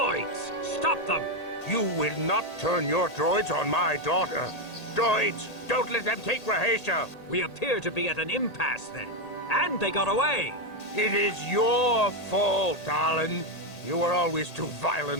stop them! You will not turn your droids on my daughter. Droids, don't let them take Rahasia. We appear to be at an impasse, then. And they got away. It is your fault, darling. You were always too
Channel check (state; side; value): late; right; 1.8 ms